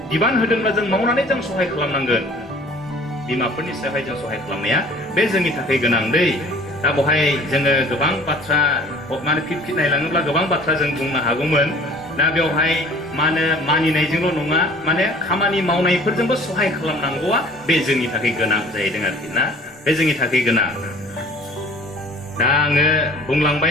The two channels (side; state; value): both; normal; correlation 0.49